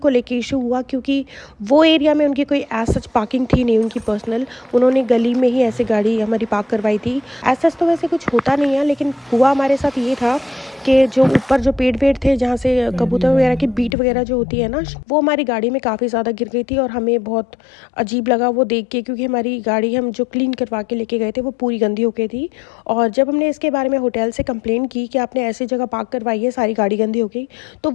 लेके इशू हुआ, क्योंकि वो एरिया में उनकी कोई एज सच पार्किंग थी नहीं उनकी पर्सनल। उन्होंने गली में ही ऐसे गाड़ी हमारी पार्क करवाई थी। एज सच तो वैसे कुछ होता नहीं है, लेकिन हुआ हमारे साथ ये था कि जो ऊपर जो पेड़ थे जहाँ से कबूतर वगैरह की बीट वगैरह जो होती है ना, वो हमारी गाड़ी में काफ़ी ज़्यादा गिर गई थी। और हमें बहुत अजीब लगा वो देख के, क्योंकि हमारी गाड़ी हम जो क्लीन करवा के लेके गए थे वो पूरी गंदी हो गई थी। और जब हमने इसके बारे में होटल से कंप्लेन की कि आपने ऐसी जगह पार्क करवाई है, सारी गाड़ी गंदी हो गई, तो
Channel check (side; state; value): right; drops out; at 14.0 s